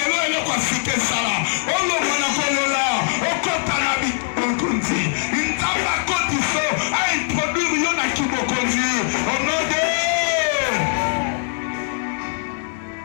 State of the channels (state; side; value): silent; right; digital silence